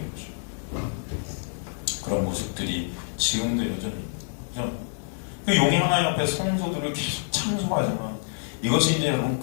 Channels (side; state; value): right; silent; 60 dB below the other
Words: 거죠. 그런 모습들이 지금도 여전히 그죠? 그 용의 하나님 앞에 성도들을 계속 찬송하지만 이것이 이제 여러분